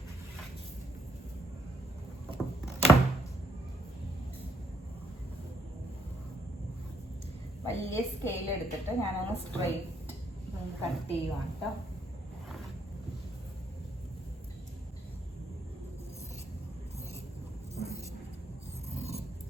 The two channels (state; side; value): normal; both; correlation 0.71